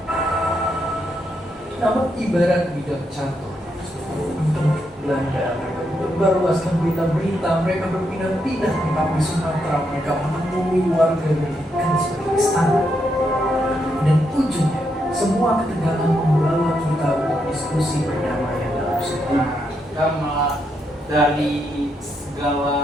Namun ibarat bidang catur, untuk Belanda mereka membaruaskan berita-berita, mereka berpindah-pindah tempat di Sumatera, mereka menemui warga menjadikan sebagai standar. Dan ujungnya, semua ketegangan membawa kita untuk diskusi perdamaian dalam sebuah dari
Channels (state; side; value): normal; both; correlation 0.80